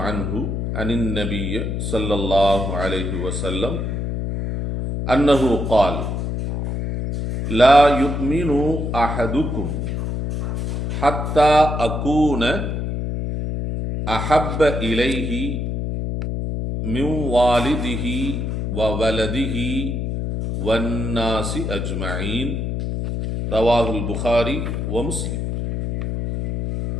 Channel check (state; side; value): noise; left; hum, 2 dB below the sound